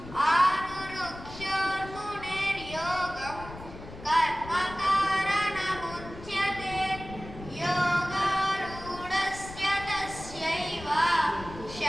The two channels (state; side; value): noise; left; rumble, 14 dB below the sound